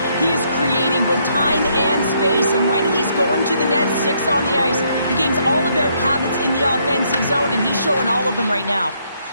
he is creating both time and space. And when he's going to the net, 6 on the ice, the game's all about habits in the offensive zone, and he's showing all of them right now.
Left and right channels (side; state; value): both; inverted; correlation -0.71